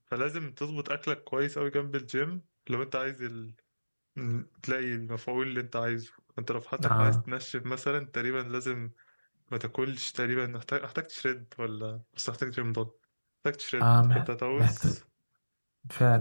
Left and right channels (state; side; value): inverted; both; correlation -1.00